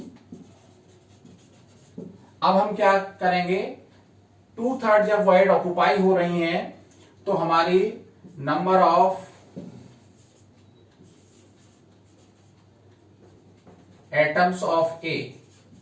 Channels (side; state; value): both; identical; correlation 1.00